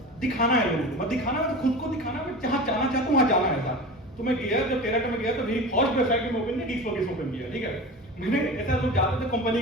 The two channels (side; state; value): both; normal; correlation 0.32